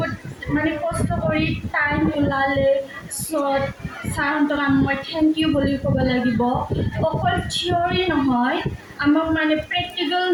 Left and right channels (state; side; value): identical; both; correlation 1.00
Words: মানে কষ্ট কৰি টাইম ওলালে চ' ছাৰহঁতক মই থেংক ইউ বুলি ক'ব লাগিব অকল থিয়ৰী নহয় আমাক মানে প্ৰেক্টিকেল